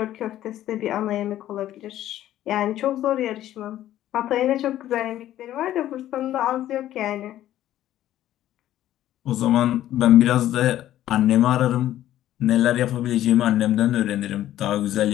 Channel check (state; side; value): quieter; right; 12.9 dB